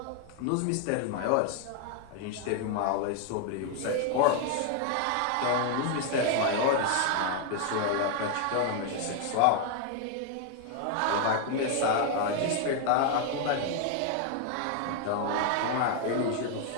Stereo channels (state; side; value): different; both; correlation 0.00